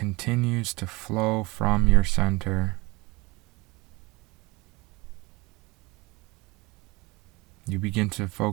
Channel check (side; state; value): left; quieter; 23.2 dB